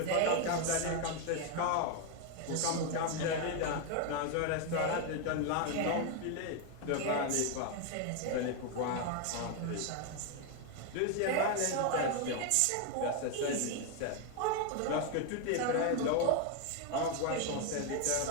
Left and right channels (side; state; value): both; different; correlation 0.01